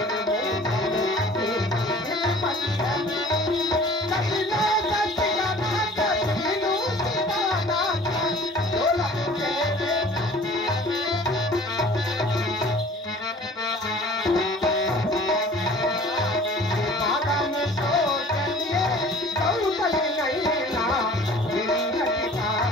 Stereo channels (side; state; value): both; normal; correlation 0.48